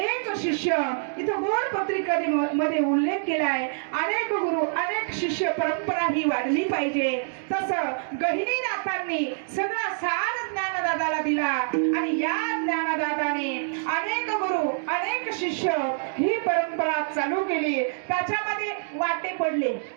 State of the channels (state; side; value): silent; left; digital silence